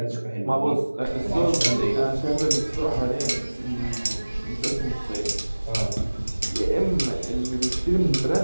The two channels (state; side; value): inverted; both; correlation -1.00